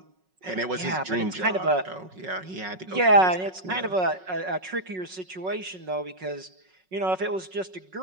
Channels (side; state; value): left; late; 5.4 ms